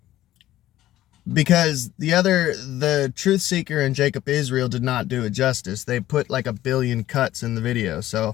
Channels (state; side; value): quieter; right; 14.2 dB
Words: Because the Truth Seeker and Jacob Israel did not do it justice. They put like 1 billion cuts in the video.